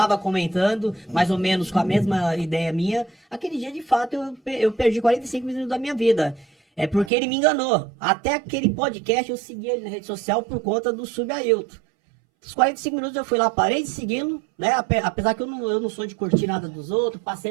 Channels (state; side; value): drops out; left; at 7.1 s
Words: comentando, mais ou menos com a mesma ideia minha. Aquele dia, de fato, eu perdi 45 minutos da minha vida. É porque ele me enganou. Até aquele podcast eu segui ele na rede social por conta do Subailton. Os 45 minutos eu fui lá, parei de segui-lo, né? Apesar que eu não sou de curtir nada dos outros,